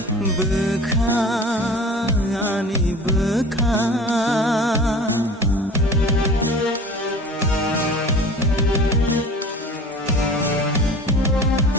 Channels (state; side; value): normal; both; correlation 0.41